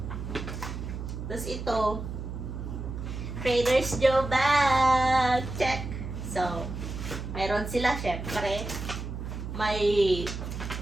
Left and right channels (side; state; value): right; noise; hum, 7 dB below the sound